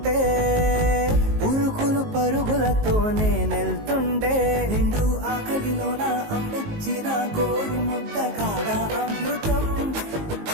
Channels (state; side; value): late; left; 19 ms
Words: ఉరుకులు పరుగులతో నేనెళ్తుండే నిండు ఆకలిలోన అమ్మిచ్చిన గోరు ముద్ద కాదా అమృతం